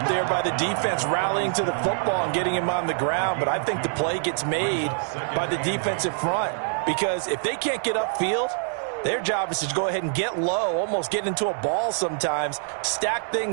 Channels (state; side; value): silent; left; 61 dB below the other